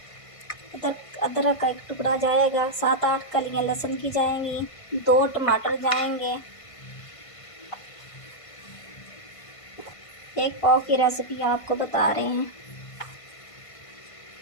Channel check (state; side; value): late; right; 1.5 ms